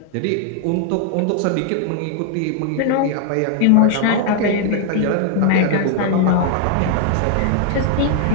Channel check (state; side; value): different; both; correlation 0.00